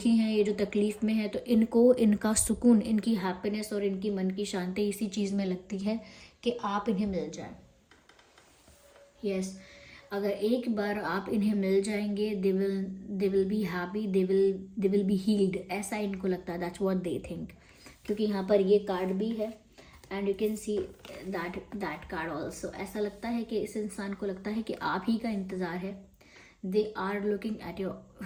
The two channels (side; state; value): both; identical; correlation 1.00